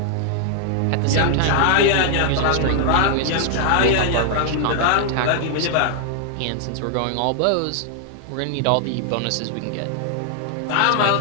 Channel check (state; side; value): different; both; correlation 0.00